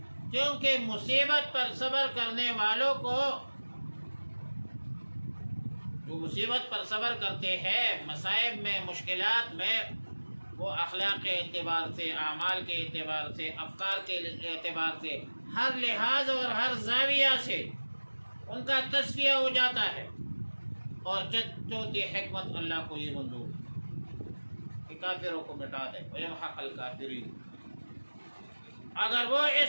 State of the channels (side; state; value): both; inverted; correlation -1.00